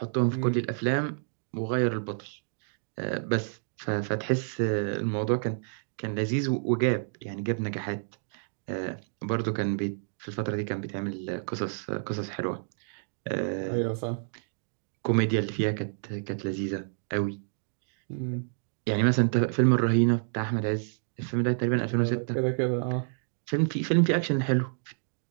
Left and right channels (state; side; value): silent; left; digital silence